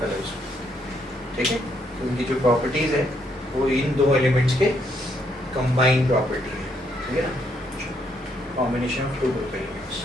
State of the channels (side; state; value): both; normal; correlation 0.73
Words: है उसमें, ठीक है। तो उनकी जो प्रॉपर्टीज है वो इन दो एलिमेंट्स के कंबाइंड प्रॉपर्टी है, ठीक है ना, combination of two group elements.